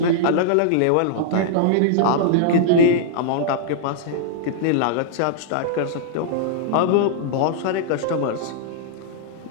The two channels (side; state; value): both; different; correlation -0.01